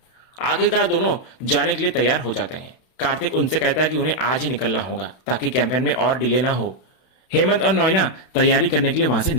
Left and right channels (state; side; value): late; right; 31 ms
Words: आखिरकार दोनों जाने के लिए तैयार हो जाते हैं। कार्तिक उनसे कहता है कि उन्हें आज ही निकलना होगा ताकि कैंपेन में और डिले ना हो। हेमंत और नॉइना तैयारी करने के लिए वहां से